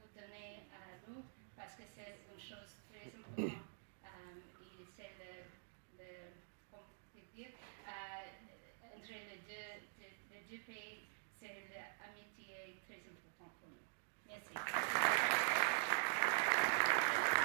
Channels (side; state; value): left; silent; digital silence